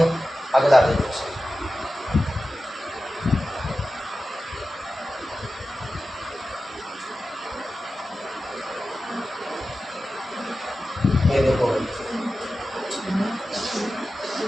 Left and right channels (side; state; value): both; normal; correlation 0.94